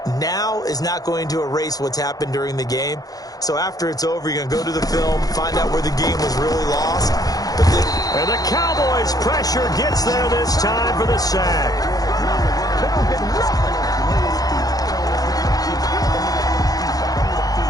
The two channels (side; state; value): right; late; 0.18 ms